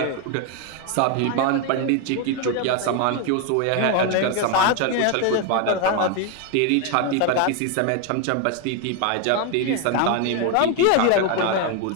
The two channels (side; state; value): both; different; correlation 0.01